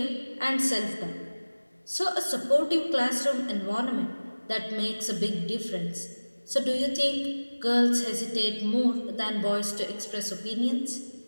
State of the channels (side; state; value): both; inverted; correlation -1.00